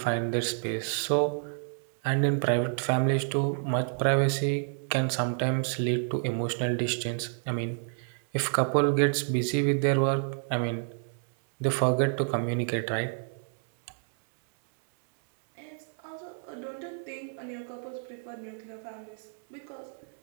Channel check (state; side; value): silent; left; 58 dB below the other